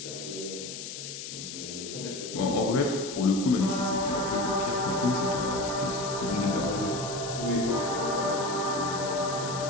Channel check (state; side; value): noise; left; hiss, 9 dB below the sound